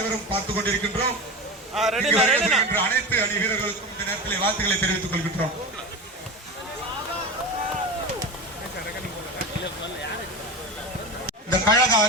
பார்த்துக் கொண்டிருக்கின்றோம். அனைத்து அணி வீரர்களுக்கும் இந்த நேரத்தில் வாழ்த்துக்களை தெரிவித்துக் கொள்கின்றோம். இந்த கழக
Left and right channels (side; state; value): both; normal; correlation 0.25